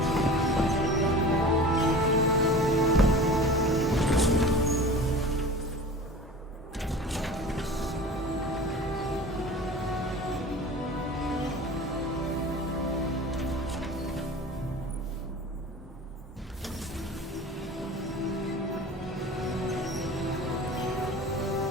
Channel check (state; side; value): normal; both; correlation 0.38